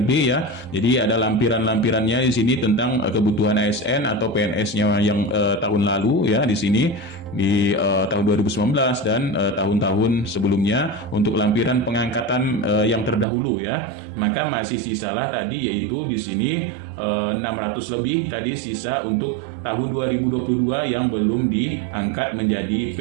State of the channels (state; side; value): drops out; left; at 13.2 s